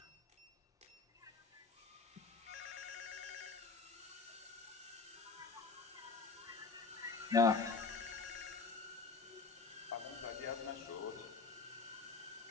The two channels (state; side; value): quieter; right; 4.4 dB